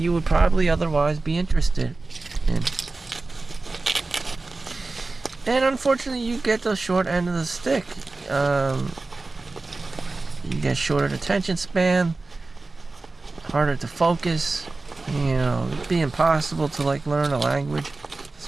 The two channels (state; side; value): quieter; left; 3.5 dB